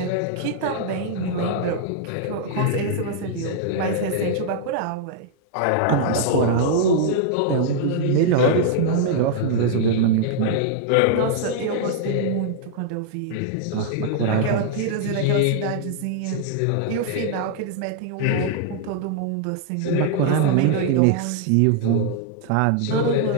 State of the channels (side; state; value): both; different; correlation -0.01